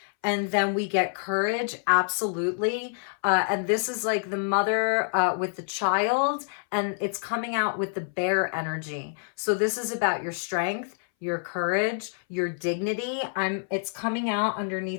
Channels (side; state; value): right; silent; 59 dB below the other